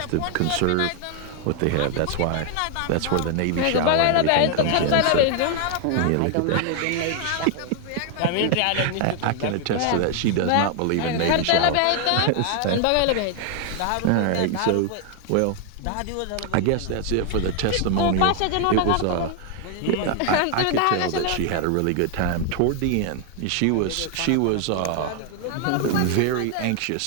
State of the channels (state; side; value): different; both; correlation 0.00